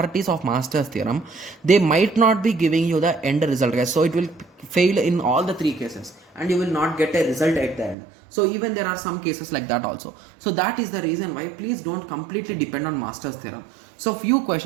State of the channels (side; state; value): left; drops out; at 8.0 s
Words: of Master's theorem, they might not be giving you the end result, guys. So it will fail in all the three cases and you will not get a result at the end. So even there are some cases like that also. So that is the reason why please don't completely depend on Master's theorem. So few